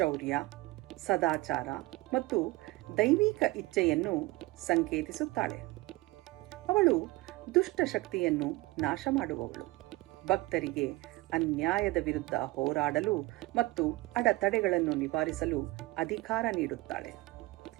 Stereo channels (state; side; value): quieter; left; 21.1 dB